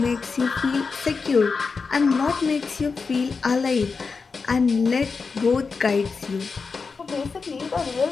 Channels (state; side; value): quieter; right; 4.8 dB